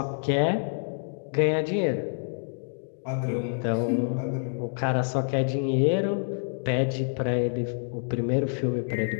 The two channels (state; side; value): silent; right; digital silence